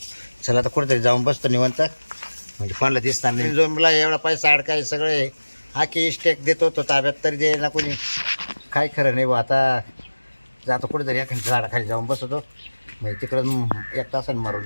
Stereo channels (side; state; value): both; inverted; correlation -1.00